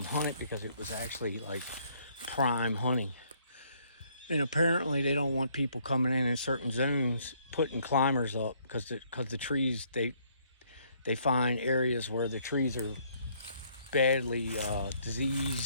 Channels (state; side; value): inverted; both; correlation -0.66